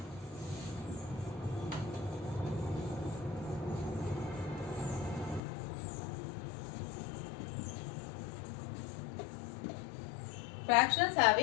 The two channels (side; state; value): right; drops out; at 5.4 s